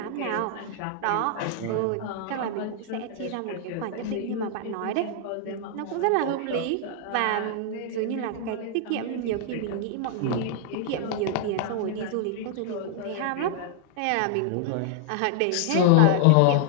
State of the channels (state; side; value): different; both; correlation 0.00